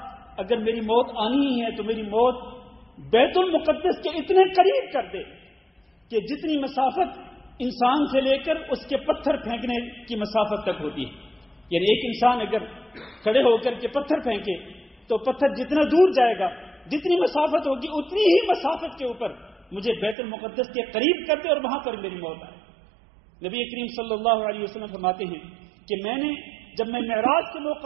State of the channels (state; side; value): drops out; left; at 20.2 s